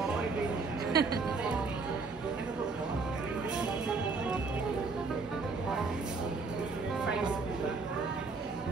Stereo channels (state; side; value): quieter; left; 4.2 dB